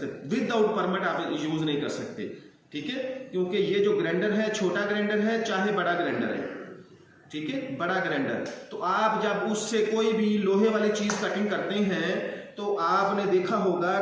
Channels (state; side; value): identical; both; correlation 1.00